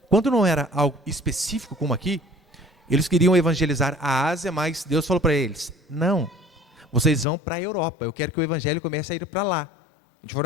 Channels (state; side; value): drops out; right; at 7.2 s